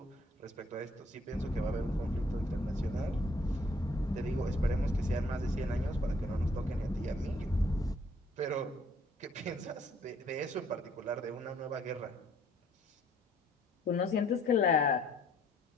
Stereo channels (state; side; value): normal; both; correlation 0.63